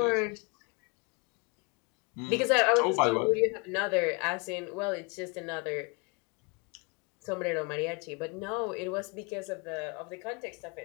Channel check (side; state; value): right; quieter; 30.8 dB